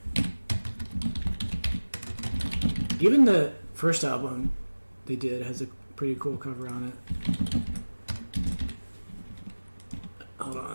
Even the first album they did has a pretty cool cover on it. Hold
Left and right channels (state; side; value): inverted; both; correlation -1.00